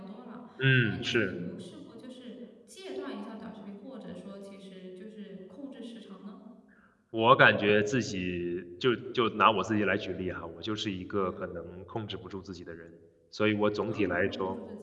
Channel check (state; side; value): identical; both; correlation 1.00